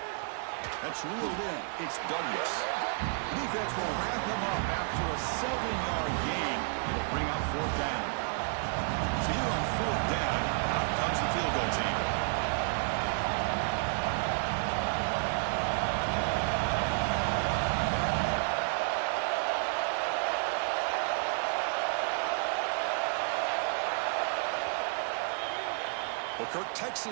That's reeled in. It's Douglas. The defense will wrap him up after a 7-yard gain. It'll bring up fourth down. So here on fourth down, out comes the field goal team. Well, Kirk,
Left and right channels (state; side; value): silent; left; 57 dB below the other